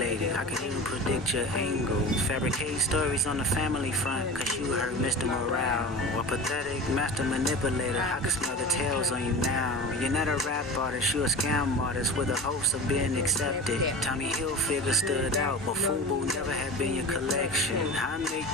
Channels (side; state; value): both; normal; correlation 0.33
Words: I can even predict your angle. Fabricate stories on the family front, cause you heard Mr. Morale. Or pathetic master manipulator. I can smell the tails on you now. You're not a rap artist, you're a scam artist with the hopes of being accepted. Tommy Hilfiger stood out, but FUBU never had been your collection. I make